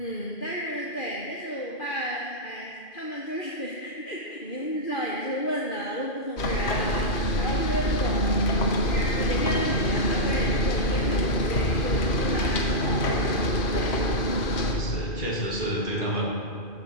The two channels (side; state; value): right; late; 2.5 ms